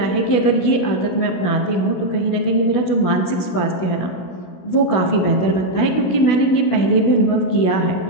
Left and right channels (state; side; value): late; right; 16 ms